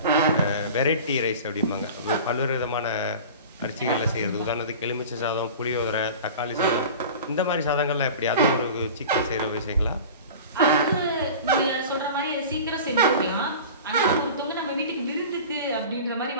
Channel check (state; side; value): inverted; both; correlation -0.37